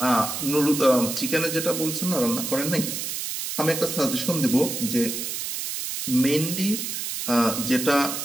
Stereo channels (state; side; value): noise; right; hiss, 4 dB below the sound